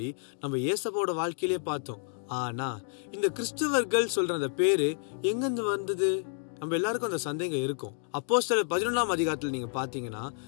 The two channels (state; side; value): silent; right; 58 dB below the other